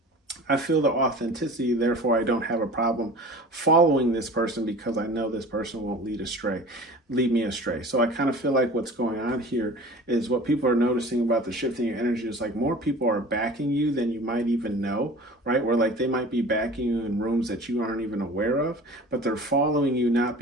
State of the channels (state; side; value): normal; both; correlation 0.41